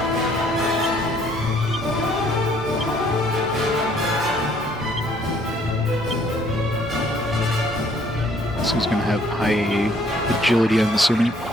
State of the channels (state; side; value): normal; both; correlation 0.62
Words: who's going to have high agility, I'm assuming.